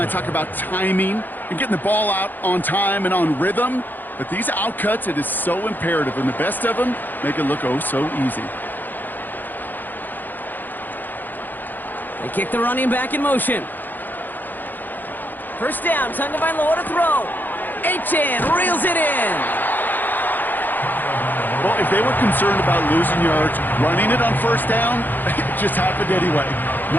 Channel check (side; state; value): right; late; 0.088 ms